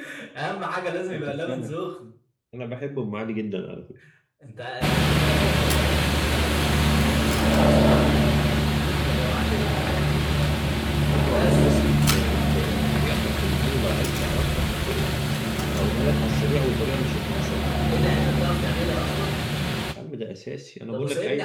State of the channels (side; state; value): both; identical; correlation 1.00